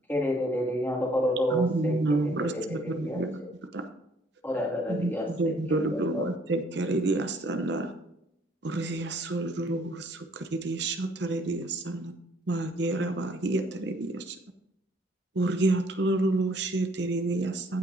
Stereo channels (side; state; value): both; normal; correlation 0.61